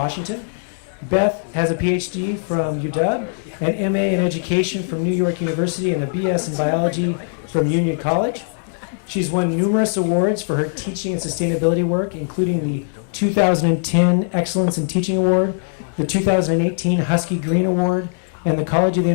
Beth has a PhD from UW, an MA in Education from New York University, and a BS in Biology from Union College. She's won numerous awards for her teaching and sustainability work, including the 2010 Excellence in Teaching Award, the 2018 Husky Green Award, and the College of the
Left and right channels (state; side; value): silent; right; digital silence